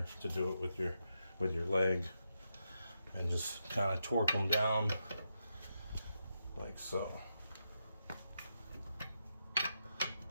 to do it with your leg, and just kind of torque them down like so.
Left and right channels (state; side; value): inverted; both; correlation -0.84